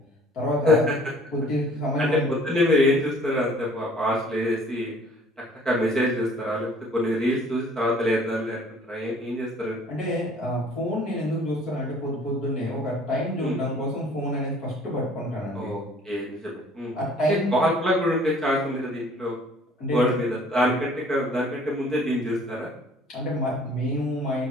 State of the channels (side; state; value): both; normal; correlation 0.54